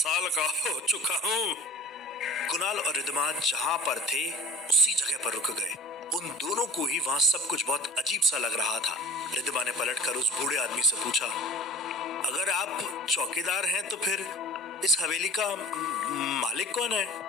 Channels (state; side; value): normal; both; correlation 0.42